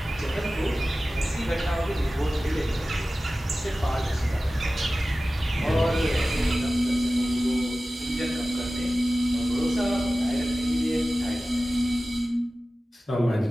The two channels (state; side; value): normal; both; correlation 0.96